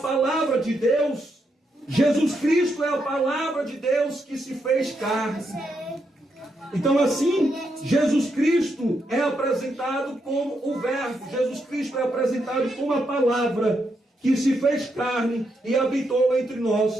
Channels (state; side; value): normal; both; correlation 0.81